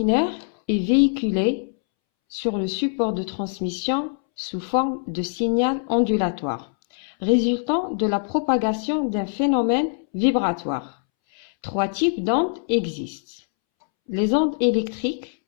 est véhiculée sur le support de transmission sous forme de signal ondulatoire, résultant de la propagation d'un phénomène vibratoire. Trois types d'ondes existent. Les ondes électriques,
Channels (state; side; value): silent; right; 63 dB below the other